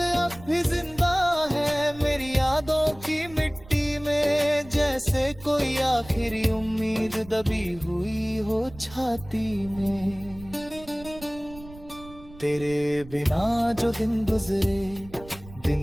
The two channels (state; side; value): noise; right; rumble, 19 dB below the sound